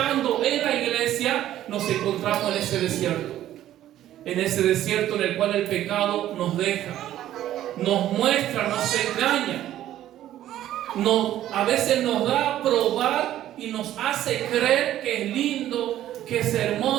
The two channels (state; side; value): quieter; left; 12.7 dB